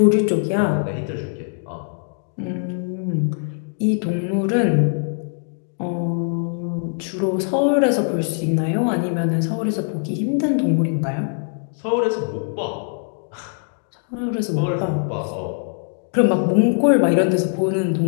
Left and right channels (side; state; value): right; silent; 64 dB below the other